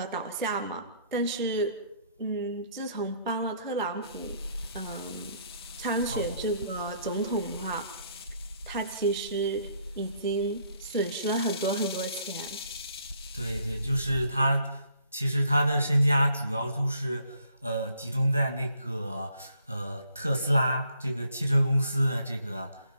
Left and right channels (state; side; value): inverted; both; correlation -0.66